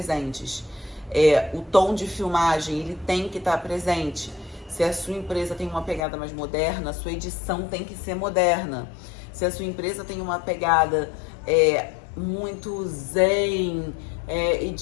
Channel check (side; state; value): right; drops out; at 6.0 s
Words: O tom de filmagem, ele tem que estar presente. Se a sua empresa tem uma pegada mais moderna, a sua edição tem que ser moderna. Se a sua empresa tem uma pegada muito zen e